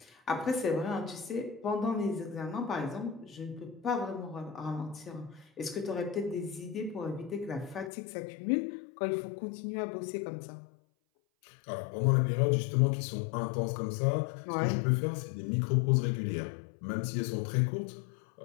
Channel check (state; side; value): drops out; right; at 7.9 s